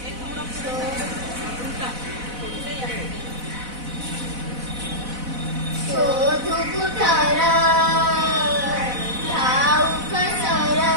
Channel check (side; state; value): left; late; 4.0 ms